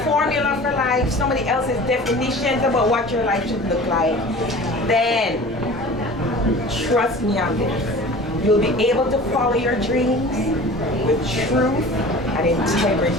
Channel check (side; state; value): both; normal; correlation 0.40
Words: formula for life, somebody else's definitions about what your life should look like, then trust me on this. You'll be able to follow your dreams with truth and